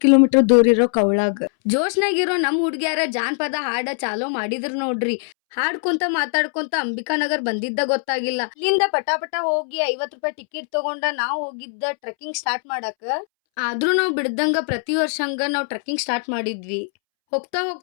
ಕಿಲೋಮೀಟರ್ ದೂರ ಇರೋ ಕವಳಾಗ. ಜೋಶ್ನಾಗಿರೋ ನಮ್ ಹುಡ್ಗ್ಯಾರ ಜಾನಪದ ಹಾಡ ಚಾಲೋ ಮಾಡಿದ್ರು ನೋಡ್ರಿ. ಹಾಡ್ಕೊಂತ ಮಾತಾಡ್ಕೊಂತ ಅಂಬಿಕಾನಗರ್ ಬಂದಿದ್ದ ಗೊತ್ತಾಗಿಲ್ಲ. ಇಲ್ಲಿಂದ ಪಟಾಪಟ ಹೋಗಿ 50 ರೂಪಾಯಿ ಟಿಕೆಟ್ ತಗೊಂಡ ನಾವ್ ಹೋಗಿದ್ದ ಟ್ರೆಕ್ಕಿಂಗ್ ಸ್ಟಾರ್ಟ್ ಮಾಡಾಕ. ಆದ್ರೂ ನಾವ್ ಬಿಡ್ದಂಗ ಪ್ರತಿ ವರ್ಷ ಹಂಗ ನಾವ್ ಟ್ರೆಕ್ಕಿಂಗ್ ಸ್ಟಾರ್ಟ್ ಮಾಡಿದ್ವಿ. ಹೋಗ್ತಾ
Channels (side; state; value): right; silent; 65 dB below the other